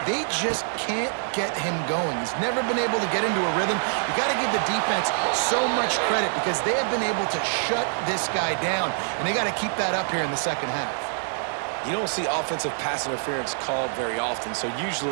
They just can't get him going. He's never been able to get into a rhythm. You got to give the defense so much credit because they have been able to shut this guy down, and they got to keep that up here in the second half. You don't see offensive pass interference called very often, so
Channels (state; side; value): silent; left; digital silence